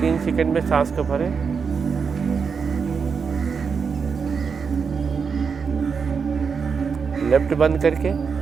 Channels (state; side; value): quieter; left; 5.8 dB